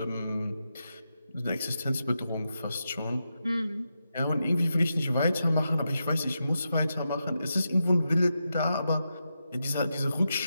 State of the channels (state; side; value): inverted; both; correlation -0.87